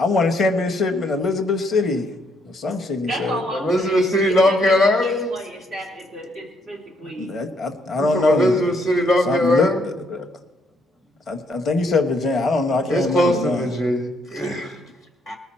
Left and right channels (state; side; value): normal; both; correlation 0.72